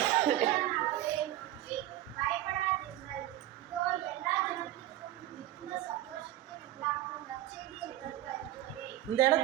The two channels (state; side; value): quieter; left; 13.9 dB